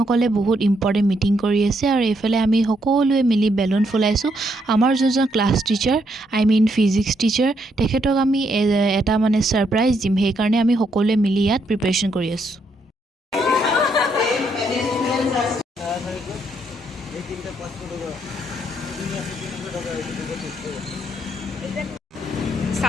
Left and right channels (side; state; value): both; normal; correlation 0.75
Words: বহুত ইম্পৰ্টেণ্ট মিটিং কৰি আছে আৰু এইফালে আমি সকলোৱে মিলি বেলুন ফুলাইছোঁ আমাৰ যোনজন class teacher I mean physics teacher তেখেতক আমি এটা মানে সাৰপ্ৰাইজ দিম সেইকাৰণে আমি সকলোৱে মিলি ইয়াত প্ৰিপাৰেচন কৰি আছোঁ